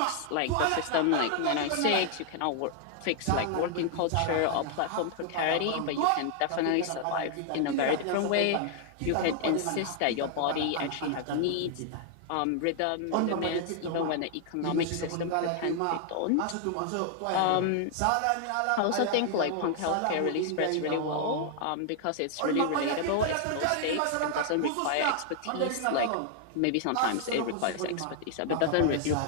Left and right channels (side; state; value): both; different; correlation 0.00